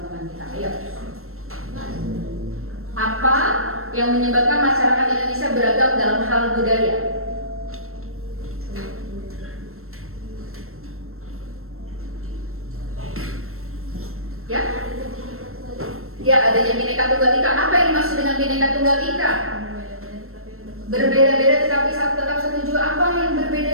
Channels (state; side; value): late; left; 0.62 ms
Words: kita. Ayo. Apa yang menyebabkan masyarakat Indonesia beragam dalam hal budaya? Ya? Ya, adanya Bhinneka Tunggal Ika. Apa yang dimaksud dengan Bhinneka Tunggal Ika? Berbeda-beda tetapi tetap satu jua. Apa yang